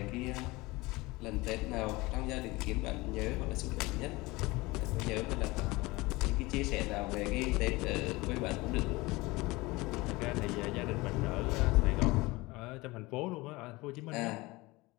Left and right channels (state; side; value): quieter; right; 22.1 dB